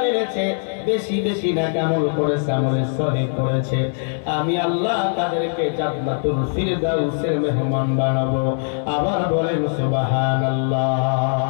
এনেছে, বেশি বেশি নেক আমল করেছে, আমলে সলিহ করেছে, আমি আল্লাহ তাদেরকে জান্নাতুল ফিরদাউসের মেহমান বানাবো। আবার বলেন সুবহানাল্লাহ।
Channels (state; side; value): silent; right; digital silence